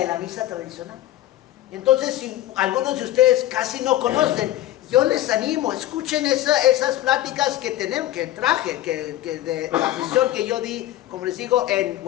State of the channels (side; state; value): right; quieter; 14.3 dB